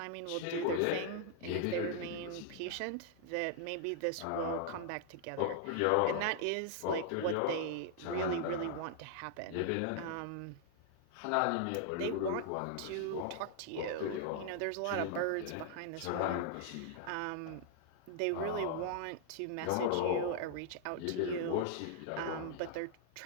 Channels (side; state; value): both; different; correlation -0.01